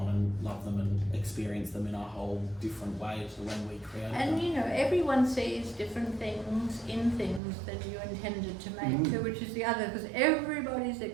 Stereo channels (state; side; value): drops out; left; at 7.4 s